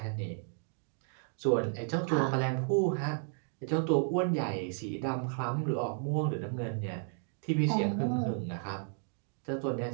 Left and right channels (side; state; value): left; silent; 56 dB below the other